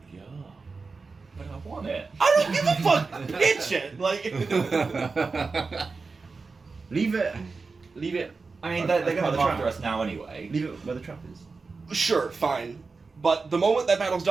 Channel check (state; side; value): quieter; left; 4.3 dB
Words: But I want it. I don't give a fuck! Pitch it! Like, Leave it. Leave it. I mean, they're going to By the come after trap. us now anyway. Leave it where the trap is. sure, fine. But the moment that battle's